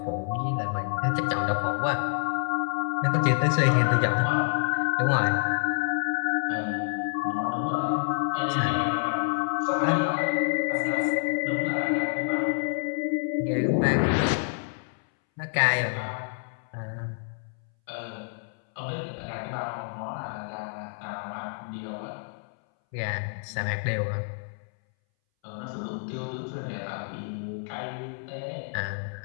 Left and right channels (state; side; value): silent; right; 59 dB below the other